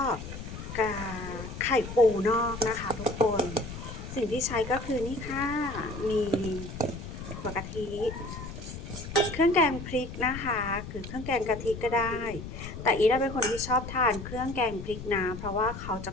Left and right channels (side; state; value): left; noise; rumble, 9 dB below the sound